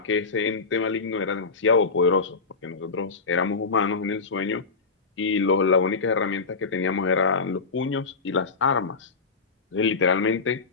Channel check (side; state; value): right; quieter; 4.5 dB